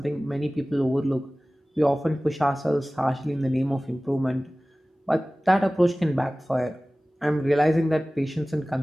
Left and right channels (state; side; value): normal; both; correlation 0.98